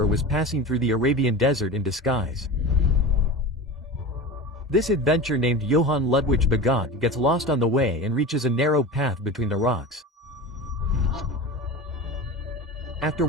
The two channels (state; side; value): normal; both; correlation 0.30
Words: was passing through the Arabian desert in disguise. This adventurer named Johann Ludwig Bagot gets lost on the way and reaches a narrow path between the rocks. After